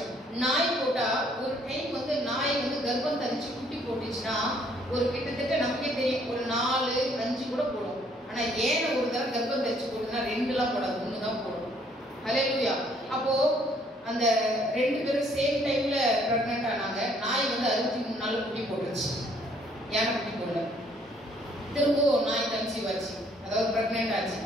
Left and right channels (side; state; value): both; normal; correlation 0.64